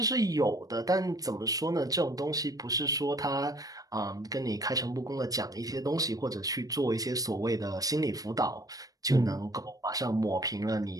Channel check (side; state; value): left; late; 0.18 ms